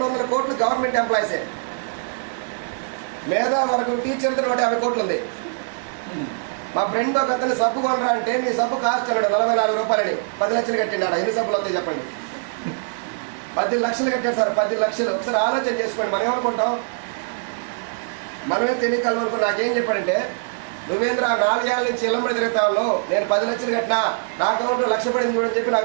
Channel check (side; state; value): left; silent; digital silence